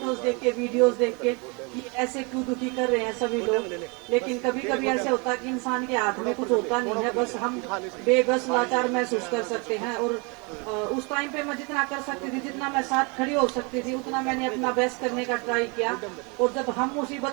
देख के, वीडियोस देख के, कि ऐसे क्यों दुखी कर रहे हैं सभी लोग। लेकिन कभी कभी ऐसे होता है कि इंसान के हाथ में कुछ होता नहीं है, बस हम बेबस लाचार महसूस कर सकते हैं। और उस टाइम पे मैं जितना कर सकती थी, जितना मैं साथ खड़ी हो सकती थी, उतना मैंने अपना बेस्ट करने का ट्राई किया। और जब हम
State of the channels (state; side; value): quieter; left; 30.8 dB